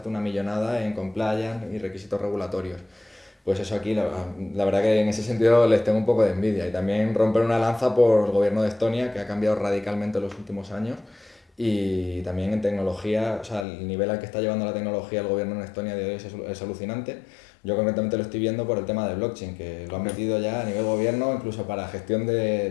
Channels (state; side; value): drops out; right; at 13.7 s